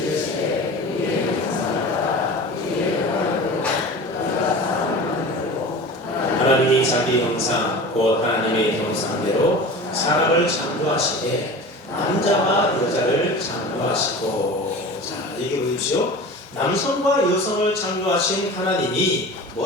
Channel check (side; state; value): both; normal; correlation 0.35